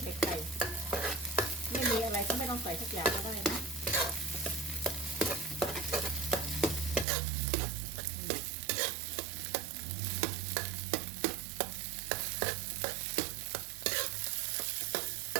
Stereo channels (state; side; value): drops out; left; at 7.1 s